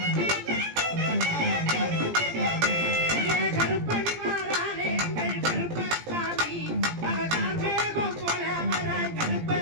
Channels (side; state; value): left; late; 17 ms